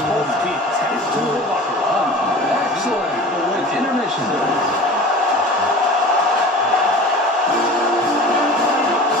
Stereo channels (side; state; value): both; normal; correlation 0.38